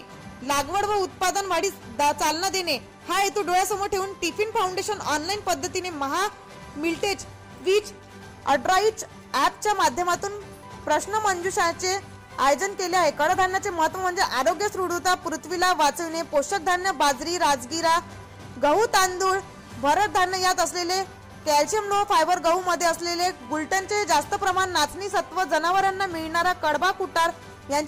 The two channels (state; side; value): identical; both; correlation 1.00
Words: लागवड व उत्पादन वाढीस चालना देणे हा हेतू डोळ्यासमोर ठेवून टिफिन फाउंडेशन ऑनलाईन पद्धतीने महामिलेट क्विज अड्राइच ॲपच्या माध्यमातून प्रश्न मंजुषाचे आयोजन केले आहे। कडधान्याचे महत्त्व म्हणजे आरोग्य, सुदृढता, पृथ्वीला वाचविणे, पोषक धान्य बाजरी, राजगिरा, गहू, तांदूळ, भरड धान्य यात असलेले कॅल्शियम, लोह, फायबर, गहू मध्ये असलेले ग्लुटेनचे जास्त प्रमाण, नाचणी सत्व, जनावरांना मिळणारा कडबा, कुटार